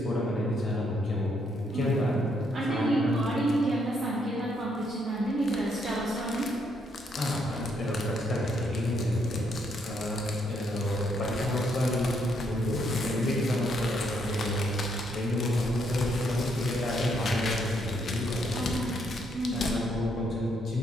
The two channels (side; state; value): both; normal; correlation 0.74